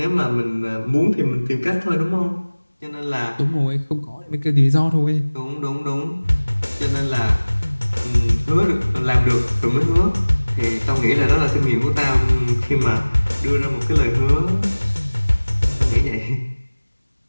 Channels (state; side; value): inverted; both; correlation -1.00